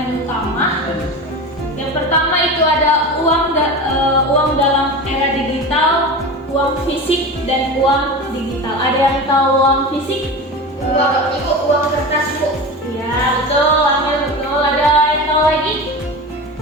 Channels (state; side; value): normal; both; correlation 0.28